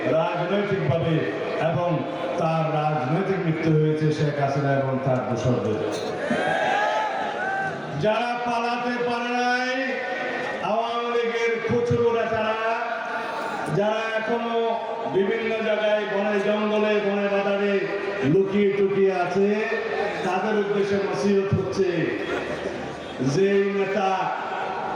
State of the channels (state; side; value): identical; both; correlation 1.00